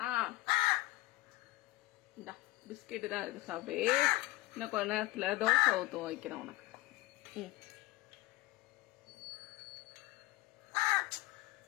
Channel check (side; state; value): right; quieter; 18.9 dB